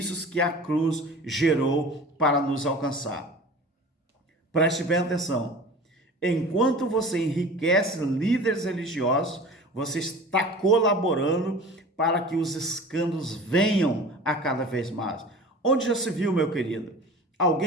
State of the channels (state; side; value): normal; both; correlation 0.39